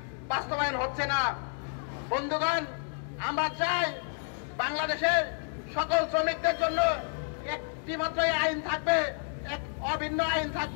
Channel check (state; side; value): silent; right; 58 dB below the other